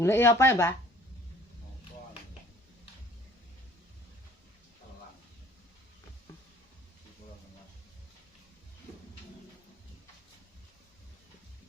apa ya, Mbak?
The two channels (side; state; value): both; normal; correlation 0.54